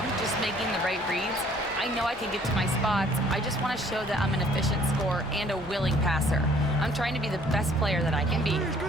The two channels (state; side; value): normal; both; correlation 0.58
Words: just making the right reads. I know I can get to my spots. I just want to show that I'm an efficient scorer and a willing passer. I'm trying to be the best player that I can be.